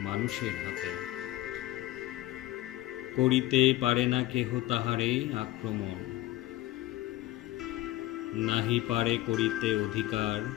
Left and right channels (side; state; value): right; quieter; 16.5 dB